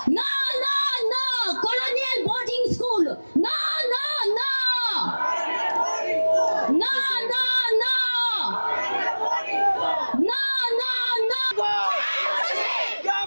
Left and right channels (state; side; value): inverted; both; correlation -1.00